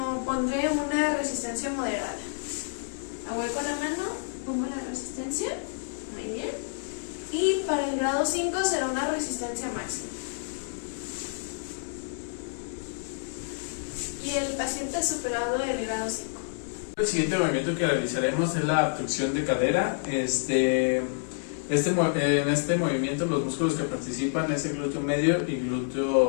pondré una resistencia moderada. Ahueco la mano, pongo la resistencia. Muy bien. Y para el grado 5 será una resistencia máxima. Y el paciente ha superado el grado 5. El siguiente movimiento que realizaremos es la abducción de cadera. En este movimiento los músculos que participan es el glúteo medio y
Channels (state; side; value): silent; right; digital silence